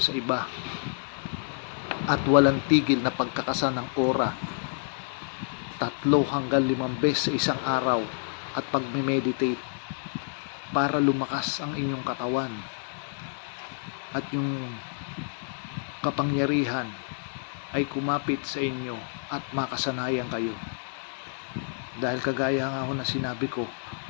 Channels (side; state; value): right; silent; digital silence